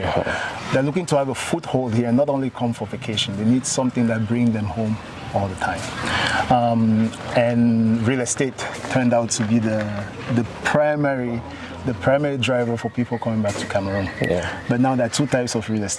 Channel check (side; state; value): both; identical; correlation 1.00